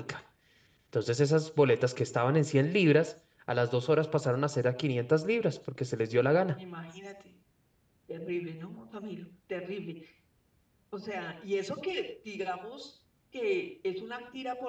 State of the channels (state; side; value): identical; both; correlation 1.00